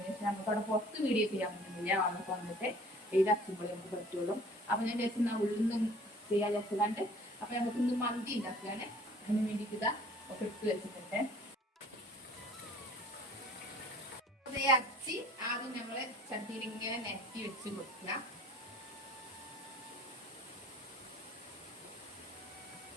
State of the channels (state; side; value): normal; both; correlation 0.50